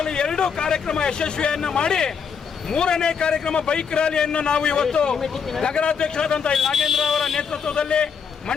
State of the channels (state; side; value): quieter; right; 6.5 dB